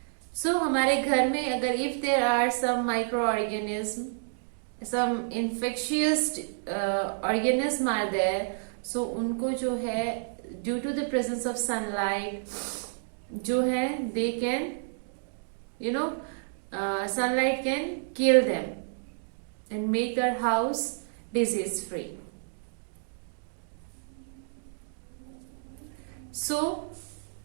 सो हमारे घर में अगर if there are some micro organism, some infectious organism are there, so उनको जो है due to the presence of sunlight जो है they can you know sunlight can kill them and make our house disease free. So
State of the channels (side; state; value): left; silent; digital silence